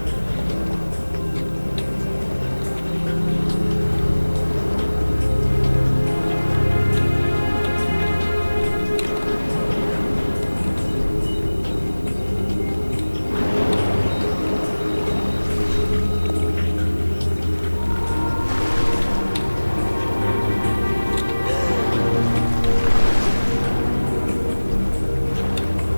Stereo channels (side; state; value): both; inverted; correlation -1.00